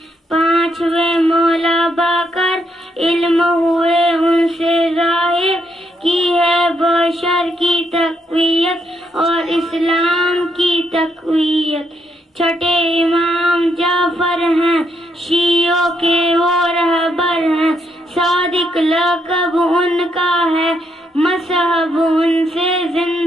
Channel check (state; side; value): normal; both; correlation 0.76